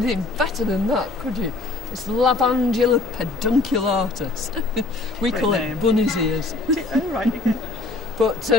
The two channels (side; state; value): right; quieter; 3.3 dB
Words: better than that, could you? It's Lavandula pedunculatus. We call it bunny's ears. Oh, right. But